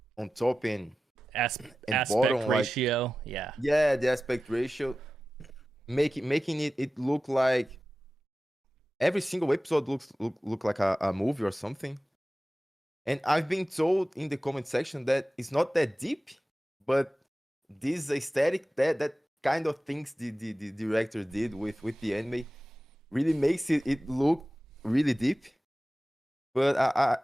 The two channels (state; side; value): normal; both; correlation 0.95